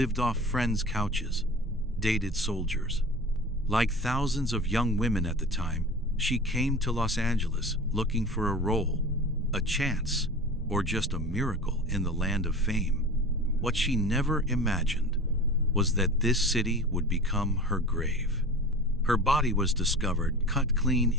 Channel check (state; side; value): normal; both; correlation 0.36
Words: off friends' couches, dated soldiers. Like thousands of young women at the time, she came to Los Angeles looking for a role, a chance, or just a miracle in the land of fame. What she never imagined was that this city would become her grave. Her body was discovered cut clean